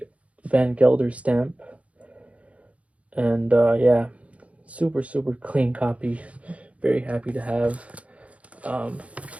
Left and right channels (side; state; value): left; late; 0.065 ms